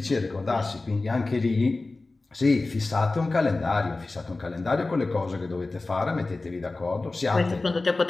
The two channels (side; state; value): right; quieter; 3.3 dB